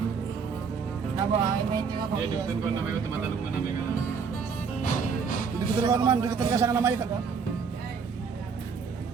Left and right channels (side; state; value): left; quieter; 5.7 dB